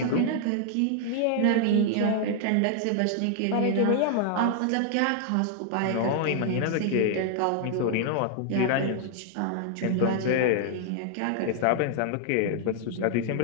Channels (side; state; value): both; different; correlation 0.00